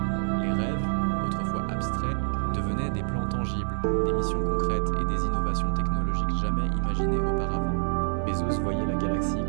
Les rêves, autrefois abstraits, devenaient des plans tangibles, des missions concrètes et des innovations technologiques jamais imaginées auparavant. Bezos voyait la galaxie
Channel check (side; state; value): left; silent; digital silence